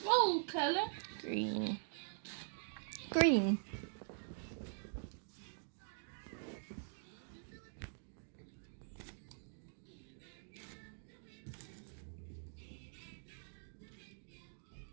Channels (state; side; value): silent; left; digital silence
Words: Roll colour. Green. Green.